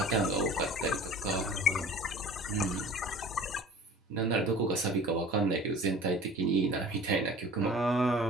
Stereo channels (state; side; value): normal; both; correlation 0.43